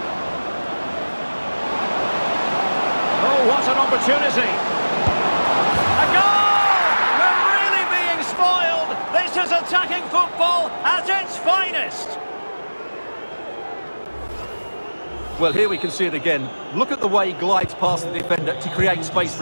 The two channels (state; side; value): inverted; both; correlation -1.00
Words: Oh, what an opportunity! A goal! We're really being spoiled! This is attacking football at its finest! Well, here we can see it again. Look at the way he glides past the defender to create space